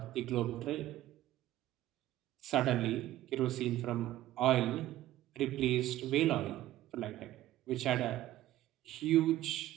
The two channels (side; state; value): left; quieter; 14.4 dB